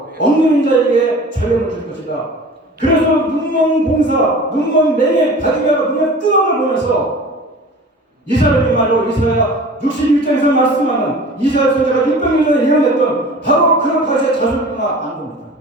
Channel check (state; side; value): normal; both; correlation 0.40